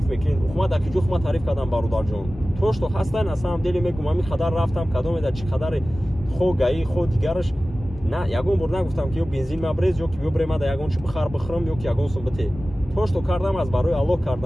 мекунед. Ухма дар ки ҷо хума тариф кардам бародарҷон. То што ҳастай на самом деле мегӯям ами қадар рафтам, кадомеда чӣ қадаре хо гаи хо дигараш. На, ягон бор нагуфтам ки ё бензин мабрез, ё ки бибре мада ягон чӣ бихар бихӯрам, ё ки ягон сум бите. То што кардам аз барои Аллоҳ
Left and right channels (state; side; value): normal; both; correlation 0.96